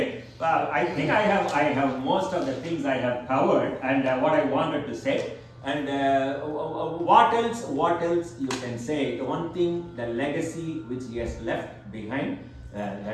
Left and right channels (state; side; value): identical; both; correlation 1.00